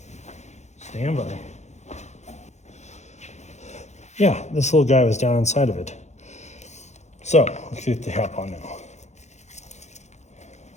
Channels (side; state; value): right; late; 0.33 ms